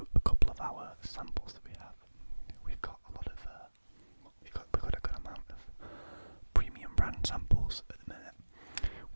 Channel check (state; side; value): inverted; both; correlation -1.00